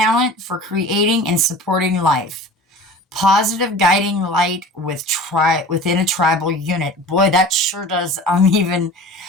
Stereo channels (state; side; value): normal; both; correlation 0.39